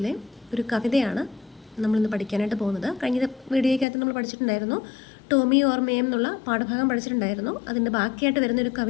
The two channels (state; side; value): drops out; right; at 3.9 s